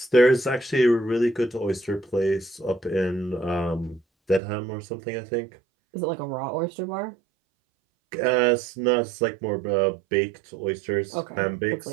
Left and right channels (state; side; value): drops out; left; at 4.4 s